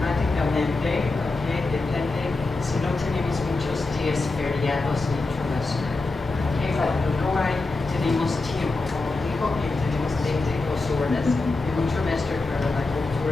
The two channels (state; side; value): quieter; right; 3.4 dB